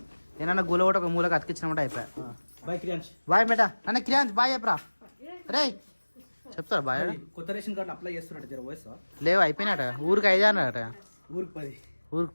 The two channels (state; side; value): inverted; both; correlation -1.00